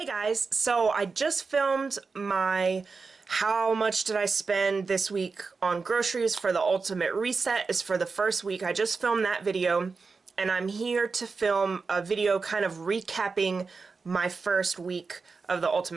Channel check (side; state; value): left; quieter; 4.6 dB